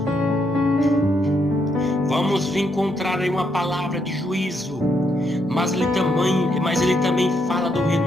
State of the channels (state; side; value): normal; both; correlation 0.76